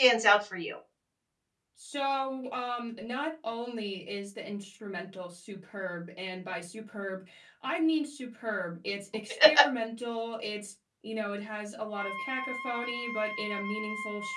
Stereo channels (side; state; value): both; identical; correlation 1.00